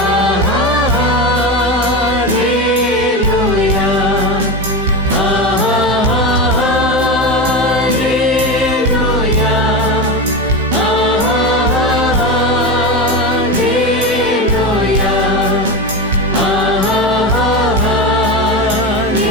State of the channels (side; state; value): both; normal; correlation 0.20